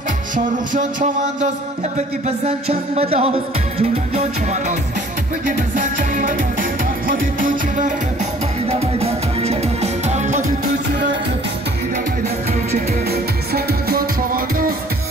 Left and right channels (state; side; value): normal; both; correlation 0.54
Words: شاروخ چوانداز بگی بزن چند بداز جولان جان چوانداز بگی بزن چند بداز خودی تو چی بکن بایده بایده کم چکن خودی تو چی بکن بایده بایده کم چکن سنگ جان چوانداز